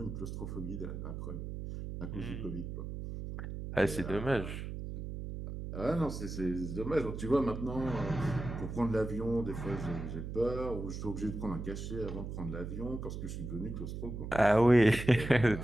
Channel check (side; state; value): right; noise; hum, 6 dB below the sound